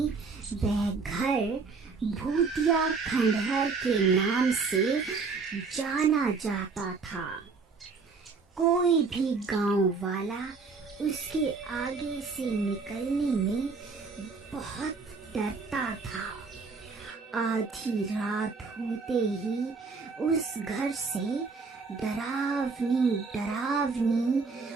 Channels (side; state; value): left; quieter; 4.6 dB